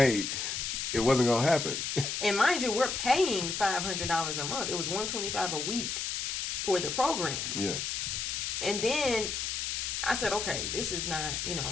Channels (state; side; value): noise; left; hiss, 2 dB below the sound